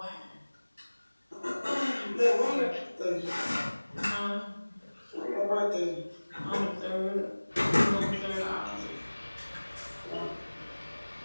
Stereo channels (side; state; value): both; inverted; correlation -1.00